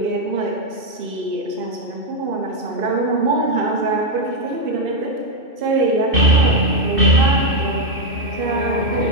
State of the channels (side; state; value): left; late; 2.6 ms